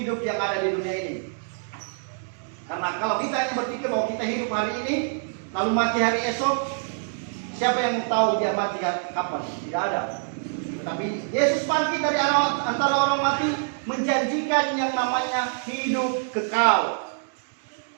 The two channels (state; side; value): silent; left; digital silence